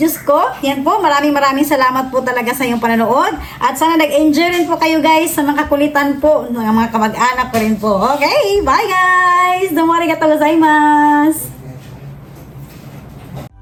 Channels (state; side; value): identical; both; correlation 1.00